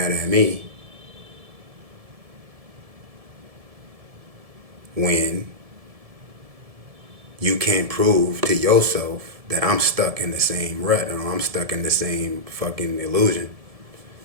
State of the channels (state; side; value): late; left; 1.7 ms